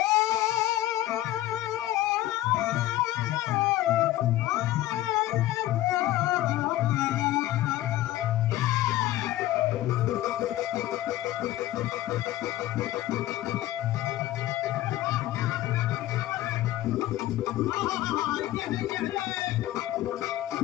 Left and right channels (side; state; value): right; quieter; 15.0 dB